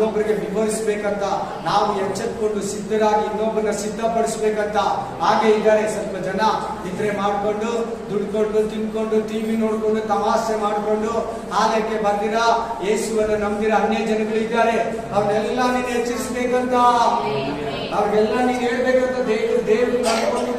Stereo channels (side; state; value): both; identical; correlation 1.00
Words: ವಿವರಿಸಬೇಕಂತ, ನಾವು ಎಚ್ಚೆತ್ಕೊಂಡು ಸಿದ್ಧರಾಗಿ ಇನ್ನೊಬ್ಬರನ್ನ ಸಿದ್ಧಪಡಿಸ್ಬೇಕಂತ ಹಾಗೆ ಇದ್ದಾರೆ. ಸ್ವಲ್ಪ ಜನ ನಿದ್ರೆ ಮಾಡ್ಕೊಂಡು, ದುಡ್ಕೊಂಡು, ತಿನ್ಕೊಂಡು, ಟಿವಿ ನೋಡ್ಕೊಂಡು, ತಮಾಷೆ ಮಾಡ್ಕೊಂಡು ಆಲಯಕ್ಕೆ ಬಂದಿರ, ಯೇಸುವನ್ನು ನಂಬಿರ ಅನ್ಯ ಜನಗಳಿದ್ದಾರೆ. ಅವ್ರನ್ನೆಲ್ಲ ನೀನು ಎಚ್ಚರಿಸಬೇಕಂತ, ಅವ್ರಿಗೆಲ್ಲ ನೀನು ಹೇಳ್ಬೇಕಂತ ದೇವರು ಕರ್ಕೊಂಡು